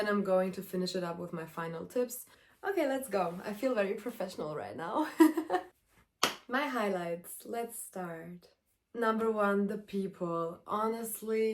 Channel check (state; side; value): identical; both; correlation 1.00